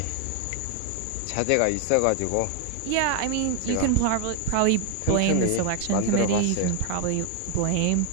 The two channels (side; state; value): both; different; correlation 0.00